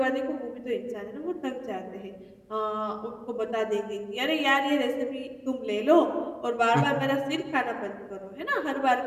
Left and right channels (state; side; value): identical; both; correlation 1.00